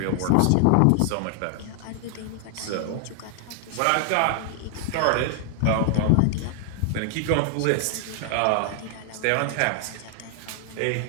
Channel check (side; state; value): both; different; correlation 0.00